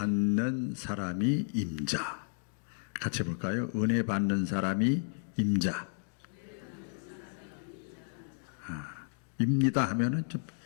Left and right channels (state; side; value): silent; right; 56 dB below the other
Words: 사람이 임자. 같이 볼까요? 은혜 받는 사람이 임자. 입니다 하면은 좀